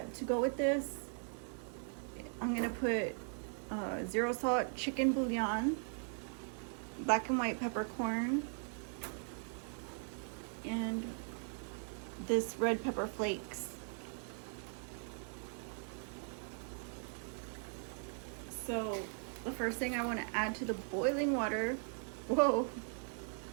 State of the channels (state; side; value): silent; left; 51 dB below the other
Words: to go with this, I'm gonna put 0 salt chicken bouillon, black and white peppercorn, and this red pepper flakes. So the first thing I want to add to the boiling water, whoa,